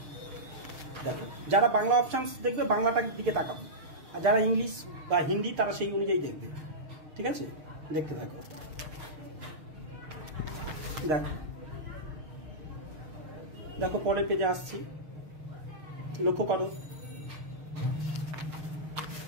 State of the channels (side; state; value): left; late; 6.5 ms